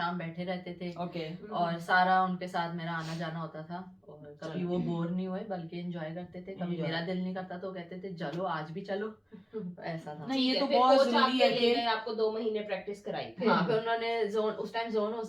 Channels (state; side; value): identical; both; correlation 1.00